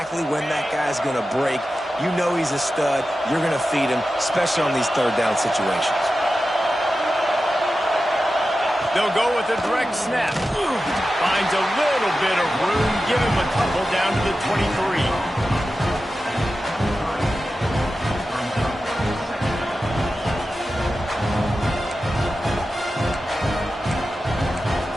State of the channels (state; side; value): normal; both; correlation 0.93